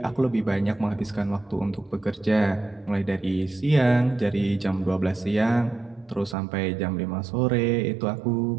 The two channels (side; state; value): left; drops out; at 6.4 s